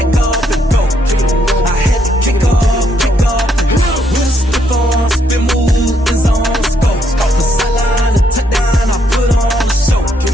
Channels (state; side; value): normal; both; correlation 0.74